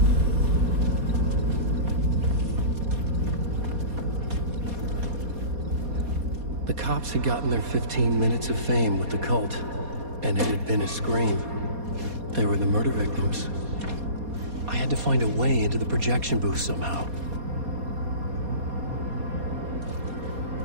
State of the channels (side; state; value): left; late; 4.2 ms